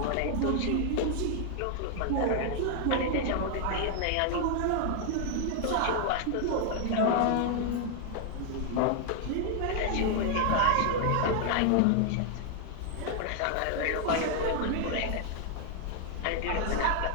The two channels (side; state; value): both; different; correlation 0.00